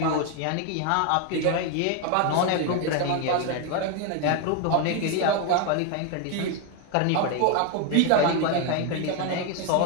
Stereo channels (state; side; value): different; both; correlation 0.01